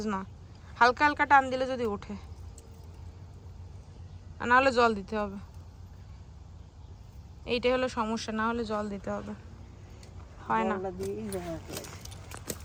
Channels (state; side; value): identical; both; correlation 1.00